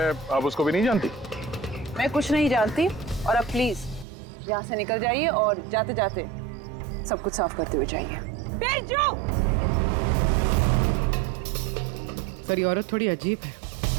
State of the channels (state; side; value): drops out; left; at 4.0 s